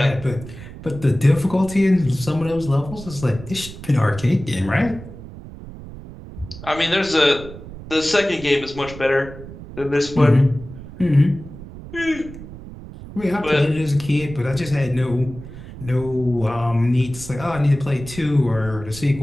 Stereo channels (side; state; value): right; noise; rumble, 14 dB below the sound